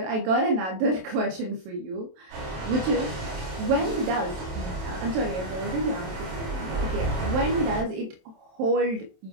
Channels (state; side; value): late; left; 27 ms